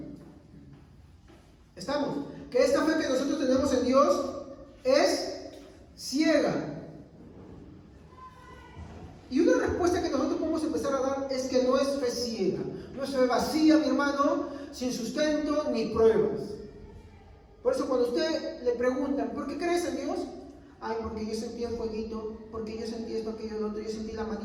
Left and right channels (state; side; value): identical; both; correlation 1.00